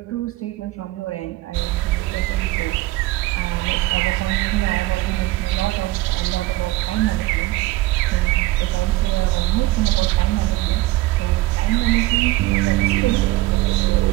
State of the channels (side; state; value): left; quieter; 18.1 dB